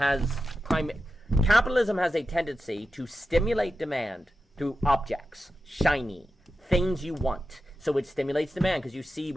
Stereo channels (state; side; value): normal; both; correlation 0.91